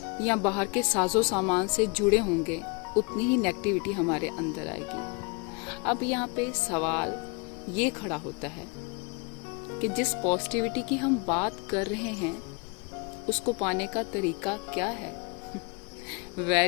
या बाहर के साजो सामान से जुड़े होंगे उतनी ही नेगेटिविटी हमारे अंदर आएगी। अब यहाँ पे सवाल ये खड़ा होता है कि जिस पॉजिटिविटी की हम बात कर रहे हैं उसको पाने का तरीका क्या है?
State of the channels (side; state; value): right; quieter; 30.4 dB